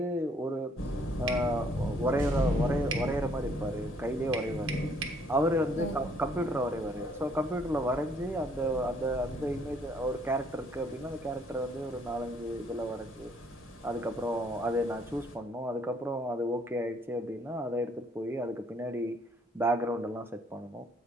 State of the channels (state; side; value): normal; both; correlation 0.65